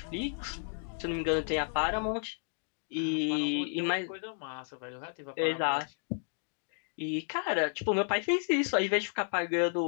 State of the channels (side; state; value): right; silent; digital silence